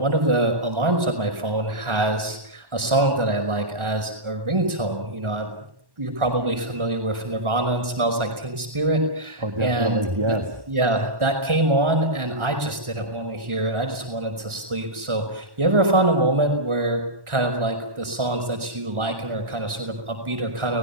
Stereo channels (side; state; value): left; late; 1.4 ms